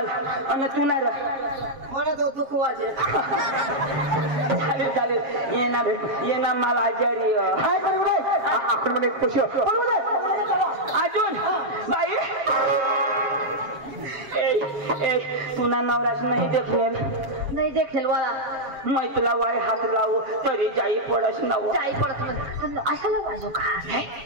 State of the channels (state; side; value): late; left; 7.3 ms